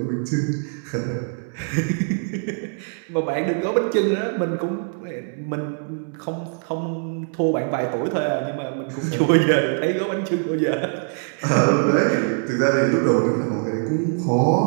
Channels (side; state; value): left; silent; 57 dB below the other